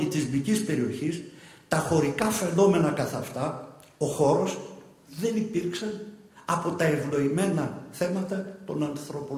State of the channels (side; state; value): both; identical; correlation 1.00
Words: περιοχής, τα χωρικά φαινόμενα καθ' αυτά, ο χώρος δεν υπήρξαν από τα ευνοημένα θέματα των